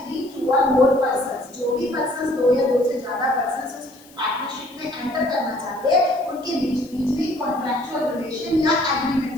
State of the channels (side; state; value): left; noise; hiss, 25 dB below the sound